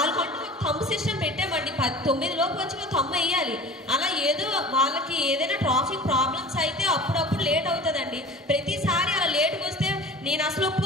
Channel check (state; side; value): normal; both; correlation 0.40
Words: ఒక థంబ్ సిస్టమ్ పెట్టామండి. 9 లోపు వచ్చి థంబ్ వేయాలి. అలా ఏదో వాళ్ళకి ఏదైనా ట్రాఫిక్ ప్రాబ్లమ్స్ అయితే అప్పుడప్పుడు లేట్ అవుతుందండి. ప్రతిసారి అలా లేట్కి వస్తే నేను అసలు